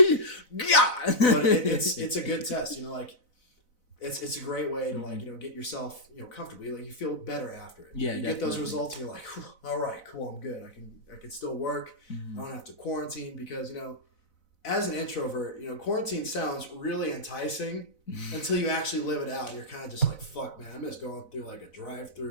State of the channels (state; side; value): late; right; 4.0 ms